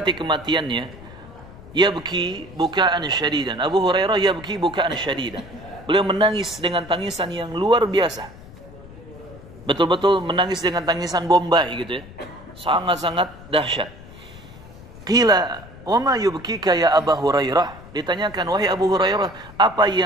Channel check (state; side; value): noise; left; rumble, 18 dB below the sound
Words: kematiannya, yabki bukaan syadidan. Abu Hurairah yabki bukaan syadidan. Beliau menangis dengan tangisan yang luar biasa. Betul-betul menangis dengan tangisan Bombay gitu ya. Sangat-sangat dahsyat. Qila, "Wa ma yubkika ya Abu Hurairah?" Ditanyakan, "Wahai Abu Hurairah, apa